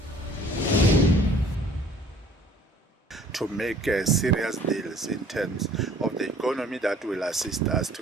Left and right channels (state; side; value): normal; both; correlation 0.54